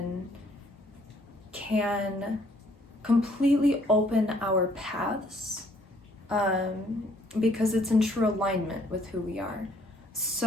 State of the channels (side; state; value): both; normal; correlation 0.64